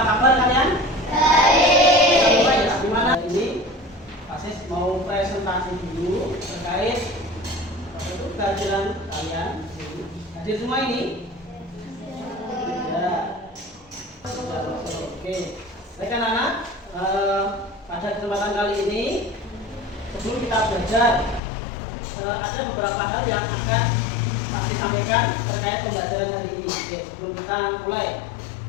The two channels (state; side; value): drops out; right; at 21.4 s